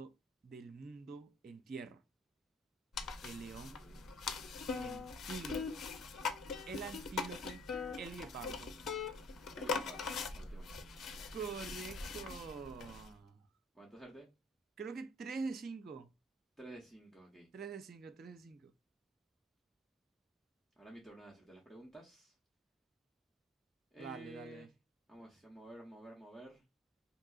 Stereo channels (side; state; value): both; normal; correlation 0.55